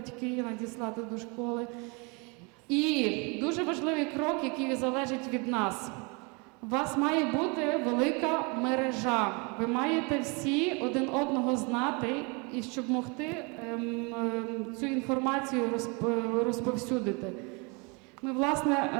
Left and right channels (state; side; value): quieter; left; 30.9 dB